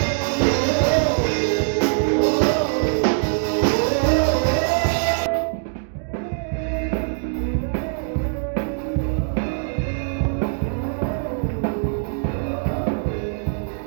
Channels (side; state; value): left; silent; digital silence